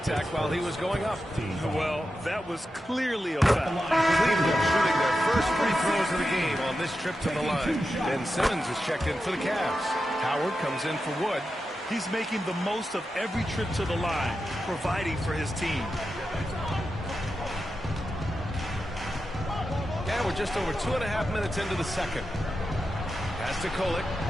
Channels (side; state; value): both; normal; correlation 0.90